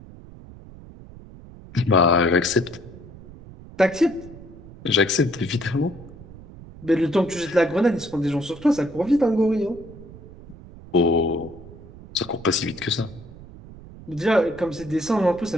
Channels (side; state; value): right; noise; rumble, 18 dB below the sound